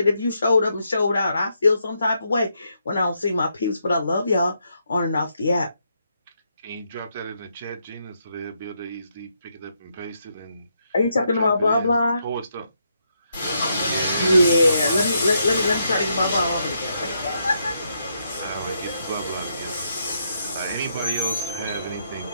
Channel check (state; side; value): inverted; both; correlation -0.78